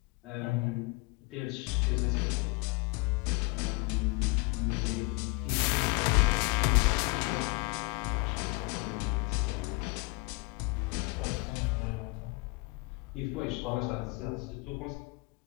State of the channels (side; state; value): right; quieter; 28.4 dB